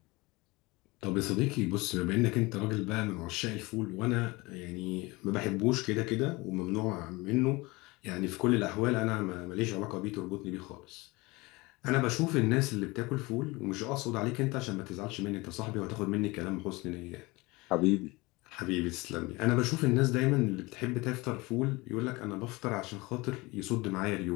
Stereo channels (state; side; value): quieter; right; 23.3 dB